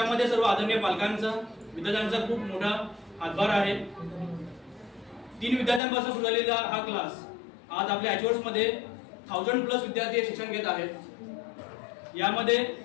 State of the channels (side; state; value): right; drops out; at 5.8 s